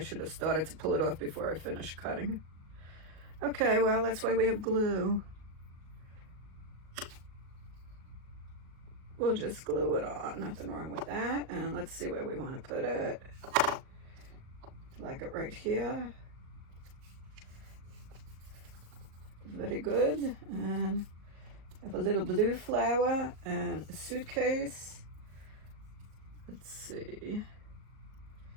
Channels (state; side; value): late; left; 37 ms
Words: have started to pull it off before I finished cutting. Okay, well, that's why we have glue. We'll just glue it on, nothing wrong with that. And let's see where we want to put it. Like it right here. Very good. And I have a little blue flower and a suitcase. Let's see.